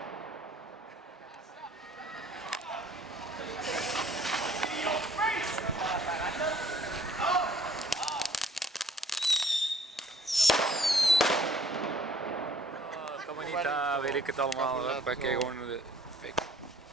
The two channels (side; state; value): both; normal; correlation 0.57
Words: Kan maar niet, weet ik het allemaal. Wij kijken gewoon de fik.